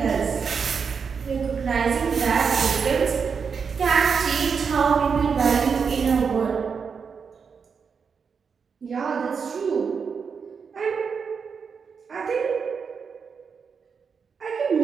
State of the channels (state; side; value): quieter; left; 5.9 dB